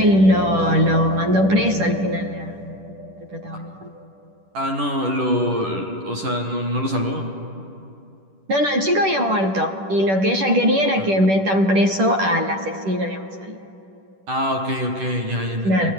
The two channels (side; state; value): left; late; 10 ms